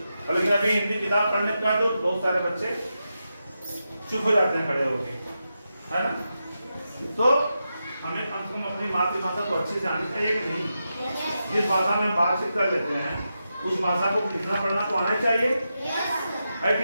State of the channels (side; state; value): both; inverted; correlation -0.88